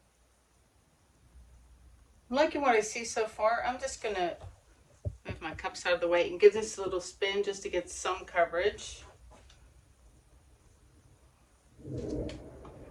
I'm liking what I see so far. I'm just going to move my cups out of the way and give this a little spin just to get some coverage.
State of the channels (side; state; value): both; identical; correlation 1.00